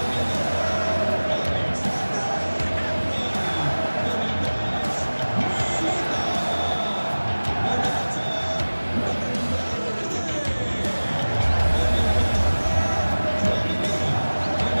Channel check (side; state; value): both; inverted; correlation -1.00